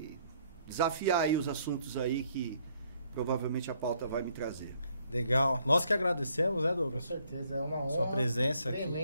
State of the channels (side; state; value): both; inverted; correlation -0.67